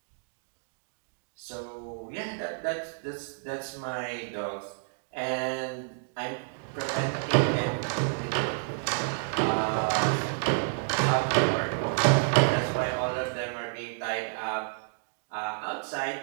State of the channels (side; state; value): left; silent; digital silence